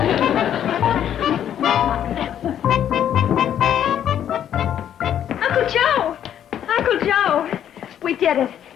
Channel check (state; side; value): quieter; right; 10.1 dB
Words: Uncle Joe! Uncle Joe! We did it.